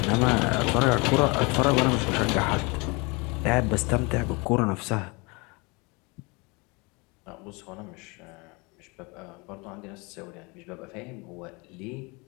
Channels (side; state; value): right; quieter; 27.9 dB